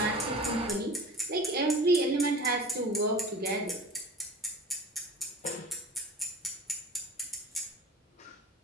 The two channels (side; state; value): both; normal; correlation 0.39